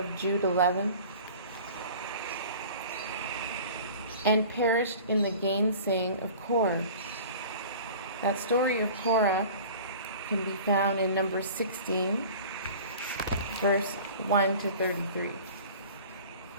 Jude 11. And perished in the gainsaying of Korah. That story of Korah can be found in Numbers 16, verse 1 to 33.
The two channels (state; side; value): inverted; both; correlation -0.42